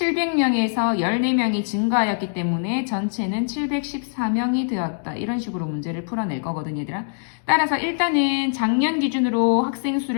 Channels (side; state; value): right; silent; digital silence